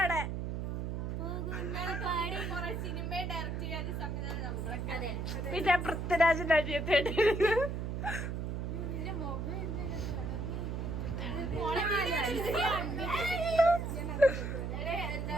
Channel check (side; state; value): right; noise; hum, 3 dB below the sound